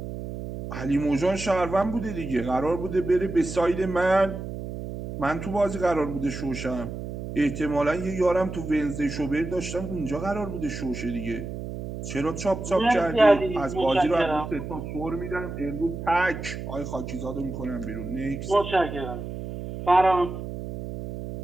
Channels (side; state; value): right; noise; hum, 7 dB below the sound